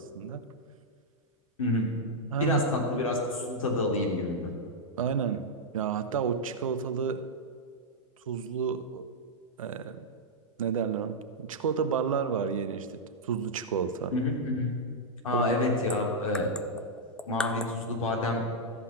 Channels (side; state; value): both; normal; correlation -0.06